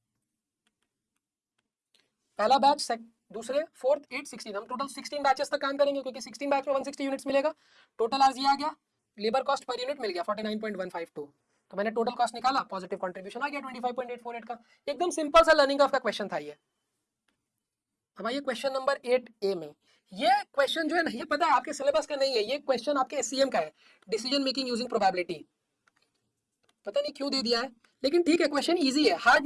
पहला बैच, दूसरे, फोर्थ, 8, 16, हम टोटल 16 बैचेस तक काम करेंगे क्योंकि 16 बैच में 160 यूनिट्स मिलेगा। टोटल आज ये आ गया, लेबर कॉस्ट पर यूनिट मिल गया 49.152, तो मैंने टोटल कॉस्ट निकाला, पॉजिटिव कंट्रीब्यूशन आ गया 25.848 का। एकदम सिंपल सा लर्निंग ऑफ का क्वेश्चन था ये। अब आइए क्वेश्चन नंबर 8A में, ये क्वेश्चन जो है ना ये पता है आपके सिलेबस का नहीं है, ये क्वेश्चन आपके एससीएम का है, डिसीजन मेकिंग यूजिंग प्रोबेबिलिटी, पता नहीं क्यों दे दिया है, लेकिन ठीक है क्वेश्चन इजी है, हार्ड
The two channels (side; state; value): both; identical; correlation 1.00